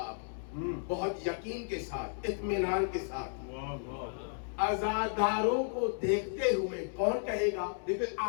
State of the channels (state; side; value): silent; right; digital silence